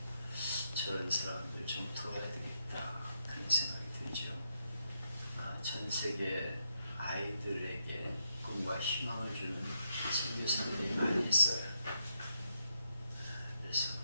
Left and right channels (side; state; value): both; inverted; correlation -0.80